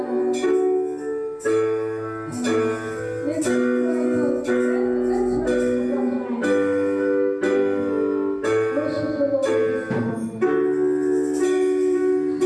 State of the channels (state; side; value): identical; both; correlation 1.00